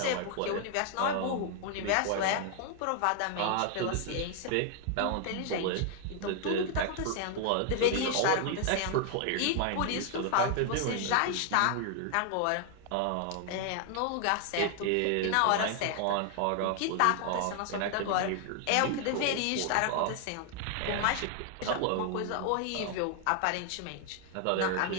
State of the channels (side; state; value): both; different; correlation 0.00